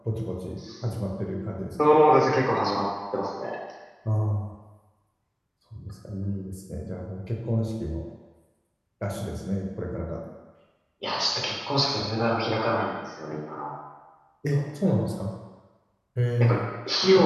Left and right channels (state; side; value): identical; both; correlation 1.00